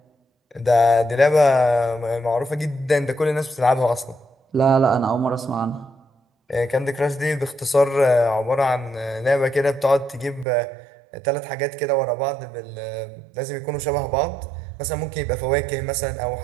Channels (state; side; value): drops out; left; at 10.5 s